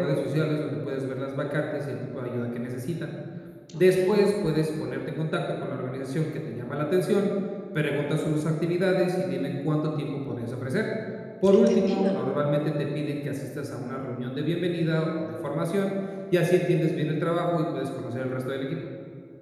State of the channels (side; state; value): both; identical; correlation 1.00